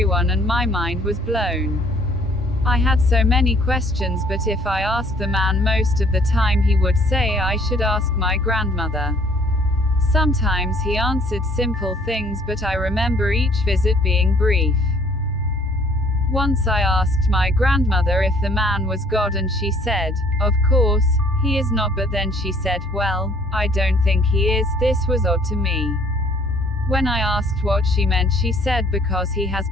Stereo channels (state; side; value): normal; both; correlation 0.59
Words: and my mind was blown. I had so many questions, but if I asked the man, most of the time he would say I should ask my grandmother. Sometimes he answered simple things, but I remember each visit being brief. Once I asked my grandmother if the man was God and she said, "Of course, he is not," but then she said, "Well, I don't think he is." This was odd to me. When I asked what she meant, she said because he has